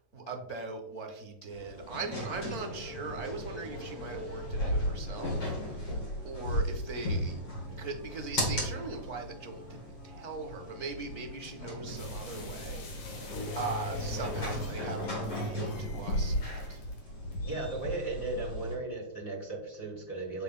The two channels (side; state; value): right; late; 7.3 ms